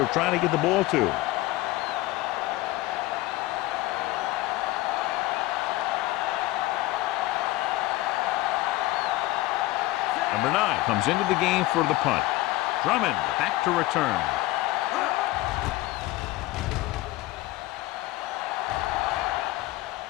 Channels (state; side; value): quieter; right; 18.2 dB